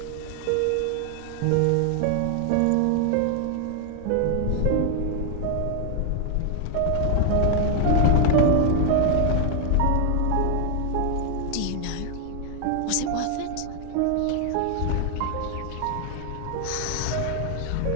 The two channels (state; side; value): different; both; correlation 0.00